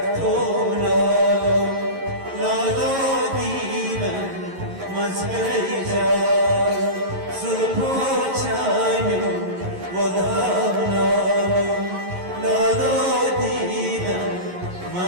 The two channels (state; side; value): late; left; 11 ms